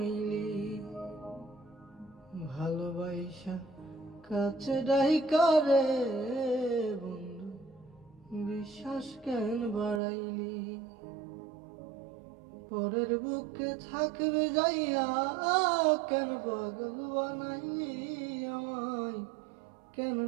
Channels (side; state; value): left; drops out; at 10.0 s